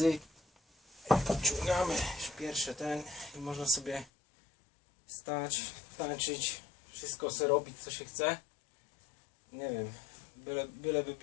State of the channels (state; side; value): drops out; right; at 4.0 s